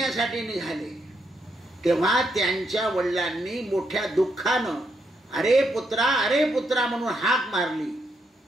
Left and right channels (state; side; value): normal; both; correlation 0.79